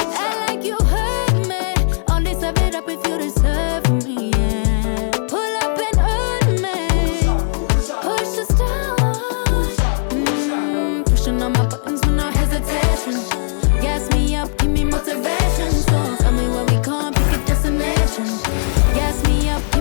Act like you heard me. Only serve it up if you deserve me, yeah. Pull up and hurt me. Push the stars. Pushing on my buttons with no hesitation. Gas me up, give me motivation. So tell me where we going, pick a destination. Gas me up,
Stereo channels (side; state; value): right; silent; 67 dB below the other